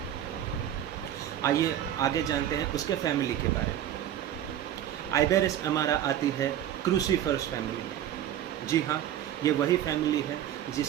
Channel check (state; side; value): quieter; left; 11.1 dB